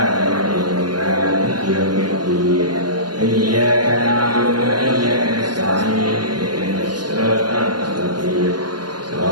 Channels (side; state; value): left; late; 0.70 ms